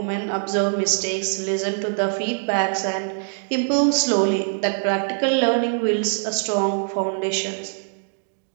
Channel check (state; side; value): silent; left; digital silence